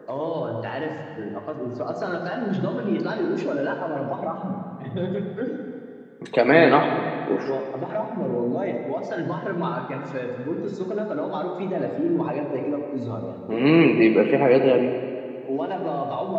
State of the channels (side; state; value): both; identical; correlation 1.00